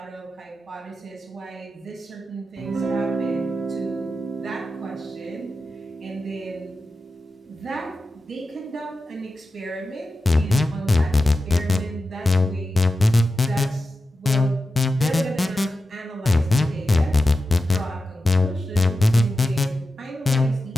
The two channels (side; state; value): both; normal; correlation 0.91